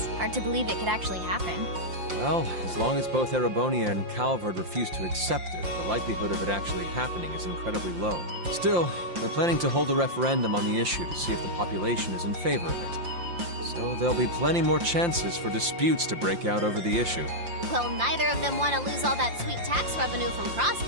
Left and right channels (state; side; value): late; left; 5.7 ms